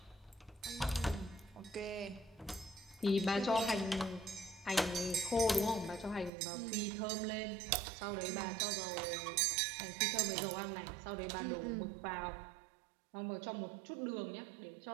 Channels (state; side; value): drops out; left; at 6.3 s